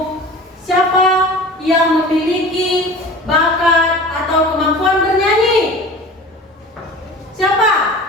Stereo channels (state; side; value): normal; both; correlation 0.39